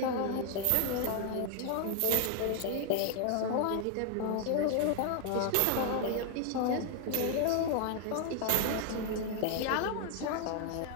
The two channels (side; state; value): both; different; correlation 0.00